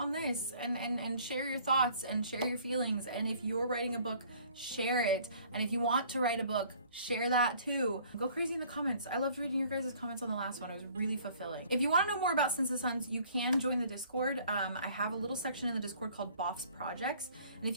this and share your thoughts and share your feelings, and if you're writing a book, share it. And if you want to write a book, share that too. Go crazy in the comments. I loved reading your guys' comments on the last one. It was really fulfilling. If you want to know more about Since the Suns, you can join the Discord. I have a little section in the Discord called Boff's Projects, and if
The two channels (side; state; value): both; inverted; correlation -0.55